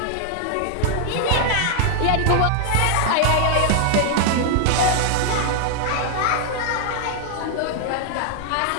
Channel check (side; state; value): both; different; correlation 0.00